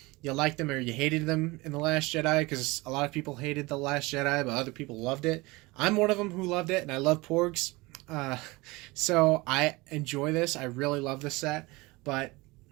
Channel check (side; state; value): left; quieter; 23.0 dB